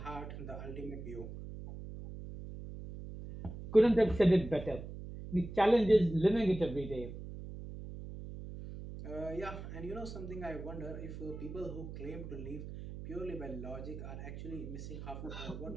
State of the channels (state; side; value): noise; right; hum, 10 dB below the sound